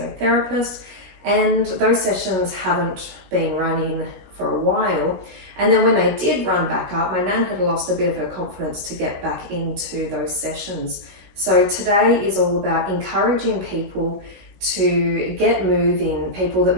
and those sessions haven't been running for a while. And then when they did run back up, my Nan had lost a bit of her confidence to get back into those sessions. So today is all about encouraging people to get moving, people that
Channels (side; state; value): left; late; 16 ms